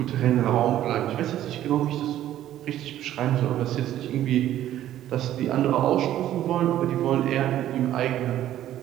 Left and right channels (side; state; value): left; quieter; 12.5 dB